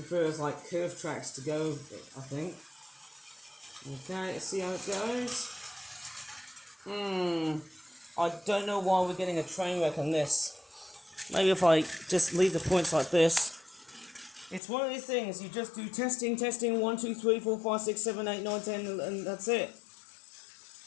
like curved tracks to go with it, I think. Okay, let's see how it goes. I don't know why we're getting a train wreck on this. Maybe if I just leave the points like this. It's one of these things, you just do testing, 1, 2, 3, 4, 5, 6, 7, 8, 9, 10, and that's it.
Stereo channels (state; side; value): drops out; right; at 14.6 s